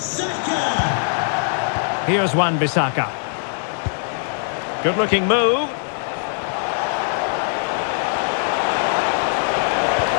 Here's Wan-Bissaka. Good-looking move.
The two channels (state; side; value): silent; right; 65 dB below the other